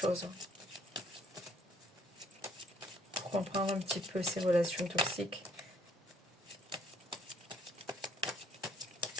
Pour comprendre un petit peu ces relations toxiques.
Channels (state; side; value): normal; both; correlation 0.64